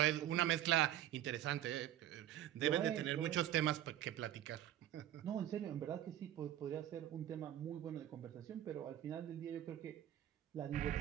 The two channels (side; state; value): left; quieter; 12.1 dB